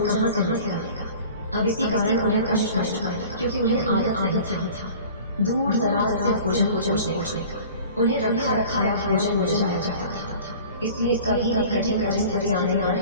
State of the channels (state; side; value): inverted; both; correlation -0.43